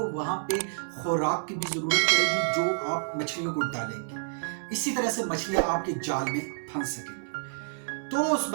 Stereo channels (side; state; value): left; silent; 59 dB below the other